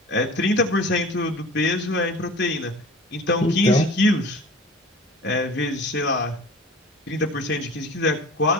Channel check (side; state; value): both; normal; correlation 0.40